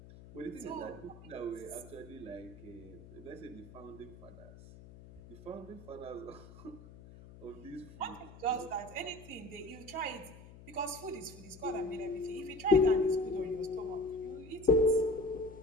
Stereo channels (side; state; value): left; noise; hum, 18 dB below the sound